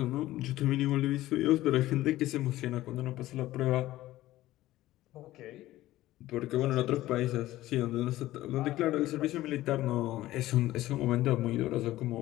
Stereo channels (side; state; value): right; quieter; 15.8 dB